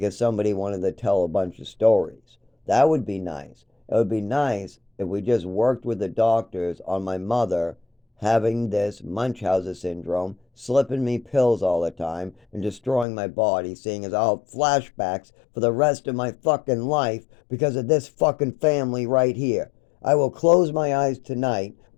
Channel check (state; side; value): drops out; right; at 13.1 s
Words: somebody wanted to tell a bunch of stories. That would be nice. It would be nice if we just worked with the doctors on my mother having this Munchausen syndrome, slipping me pills all the time, and destroying my body, seeing as I'll have flashbacks for the rest of my fucking life because of this fucking family right here. I will close my eyes tonight